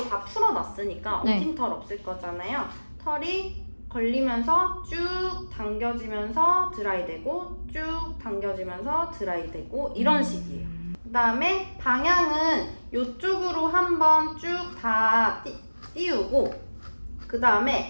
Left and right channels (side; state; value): both; inverted; correlation -1.00